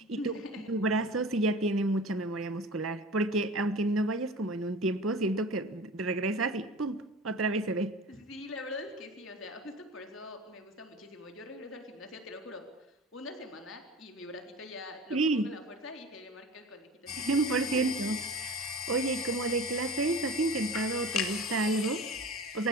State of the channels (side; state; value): both; normal; correlation 0.37